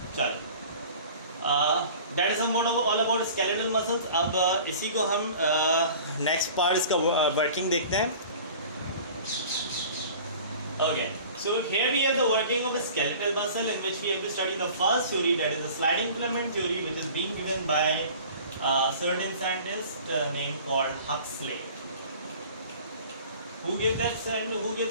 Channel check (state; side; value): inverted; both; correlation -0.44